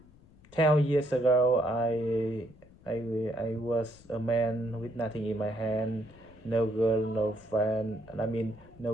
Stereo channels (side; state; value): left; noise; rumble, 25 dB below the sound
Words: 10 years ago, I was a man with nothing in my hand, no girl, no friend. I mean, no